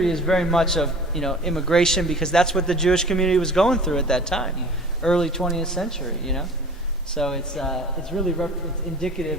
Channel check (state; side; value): normal; both; correlation 0.43